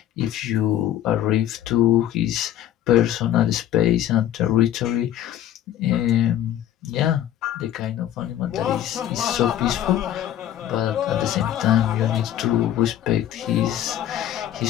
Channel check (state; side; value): quieter; right; 11.7 dB